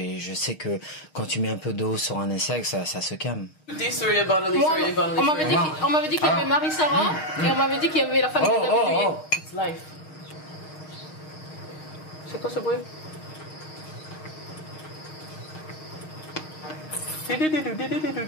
je sais que quand tu mets un peu d'eau sur un insecte, ça se calme. On m'avait dit qu'il y avait Marie-Sarah et on m'avait dit qu'il y avait la famille de David Douillet. It's life. C'est quoi ce bruit?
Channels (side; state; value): right; late; 6.4 ms